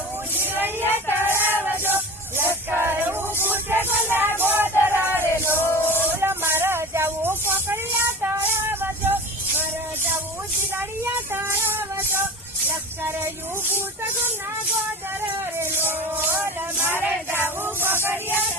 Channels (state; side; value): normal; both; correlation 0.33